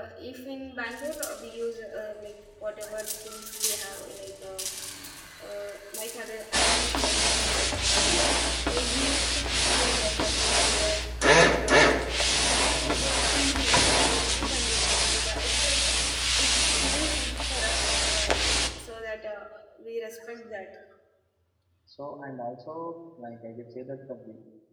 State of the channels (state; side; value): identical; both; correlation 1.00